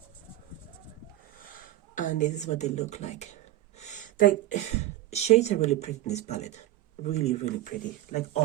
And this is what they look like. Like, shades are really pretty in this palette. Really, really pretty. Like,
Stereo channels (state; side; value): quieter; left; 14.3 dB